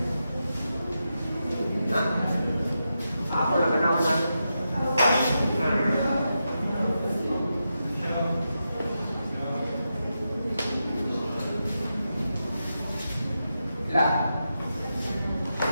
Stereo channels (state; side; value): inverted; both; correlation -0.88